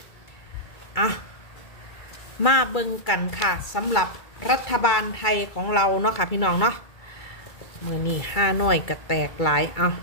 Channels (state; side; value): late; right; 2.3 ms